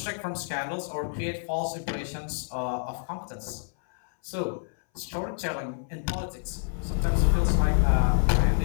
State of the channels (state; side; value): silent; right; 59 dB below the other